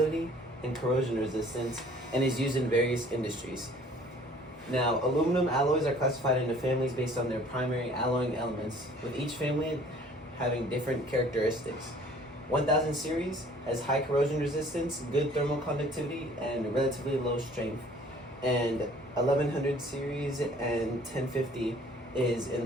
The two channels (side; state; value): both; normal; correlation 0.53